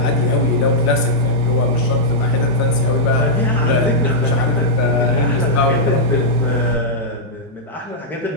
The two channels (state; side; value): normal; both; correlation -0.09